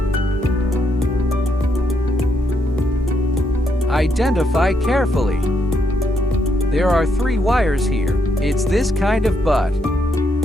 Identify carefully. There are 3 wires here. It's this kind of butt.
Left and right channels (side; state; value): both; normal; correlation 0.77